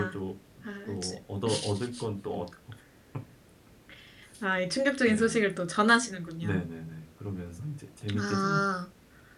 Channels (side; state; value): both; identical; correlation 1.00